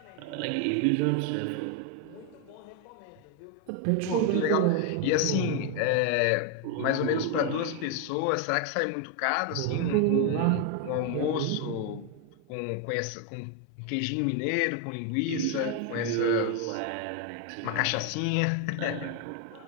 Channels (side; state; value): both; different; correlation 0.01